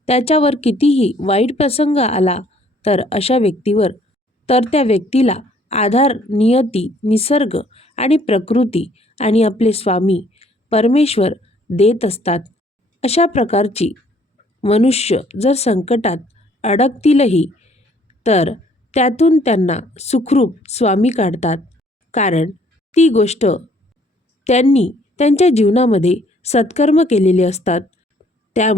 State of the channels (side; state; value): both; normal; correlation 0.61